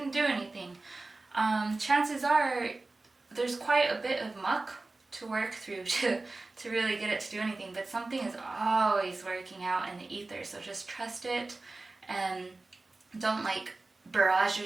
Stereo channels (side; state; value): left; quieter; 3.3 dB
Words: do anything. Chances are there's quite a bit of muck to work through to really get it to do anything, but something is always working out in the ether, so just trust it, and don't like barrage